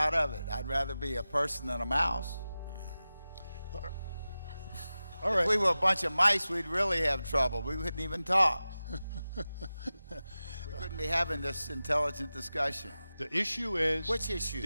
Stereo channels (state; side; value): inverted; both; correlation -0.95